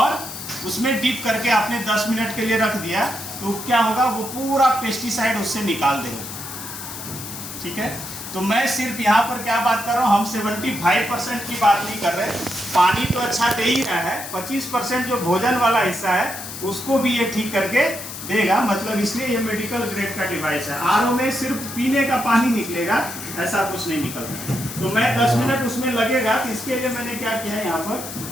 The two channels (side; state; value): left; noise; hiss, 10 dB below the sound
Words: उसमें डीप करके आपने 10 मिनट के लिए रख दिया, तो क्या होगा, वो पूरा पेस्टिसाइड उससे निकाल देगा। ठीक है, तो मैं सिर्फ यहाँ पर क्या बात कर रहा हूँ, हम 75% की बात नहीं कर रहे। पानी तो अच्छा दे ही रहा है, 25% जो भोजन वाला हिस्सा है उसको भी ये ठीक करके देगा। मतलब इसलिए ये मेडिकल ग्रेड का डिवाइस है। आरओ में सिर्फ पीने का पानी निकलेगा, ऐसा कुछ नहीं निकलता। तो मैं 10 मिनट उसमें लगेगा, तो इसके लिए मैंने क्या किया है, यहाँ पर